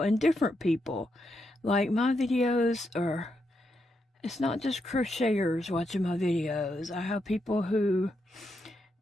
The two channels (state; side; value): normal; both; correlation 0.82